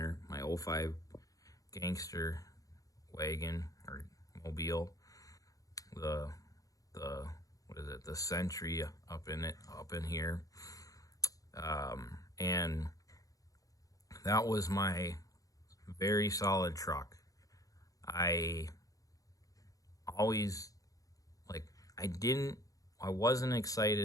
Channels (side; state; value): right; late; 0.17 ms